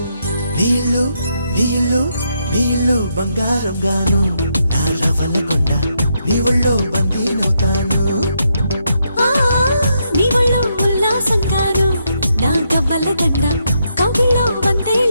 నీళ్ళు నీళ్ళు నీళ్ళు బంగారం గాను, నా రవలకుండా నీ ఒళ్ళో బందీనవుతాను. నీ ఒళ్ళో ఉల్లాసం కాను, నా గవ్వల దండ కౌగిల్లో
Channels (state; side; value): inverted; both; correlation -0.79